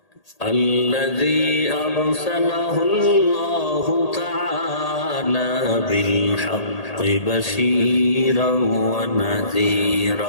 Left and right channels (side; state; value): right; late; 1.8 ms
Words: الذي أرسله الله تعالى بالحق بشيرا